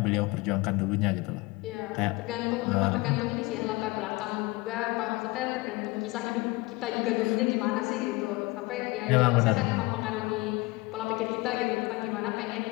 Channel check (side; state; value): right; quieter; 22.8 dB